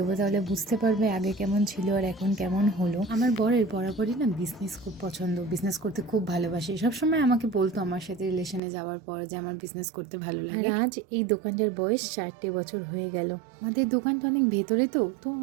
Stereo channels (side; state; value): left; drops out; at 8.6 s